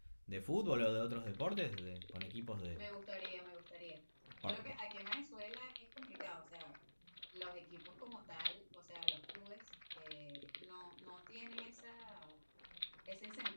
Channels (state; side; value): inverted; both; correlation -1.00